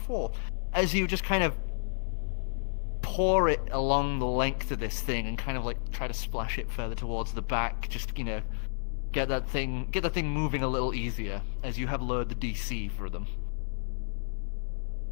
as you just kind of pour it along the length of this thing and kind of like try to splash it further towards the back, just, get that thing moving a little easier as you have lowered the DC for them.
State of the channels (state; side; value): silent; right; digital silence